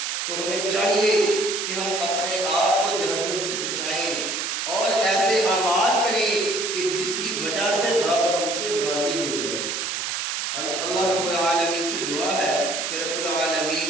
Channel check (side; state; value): right; noise; hiss, 2 dB below the sound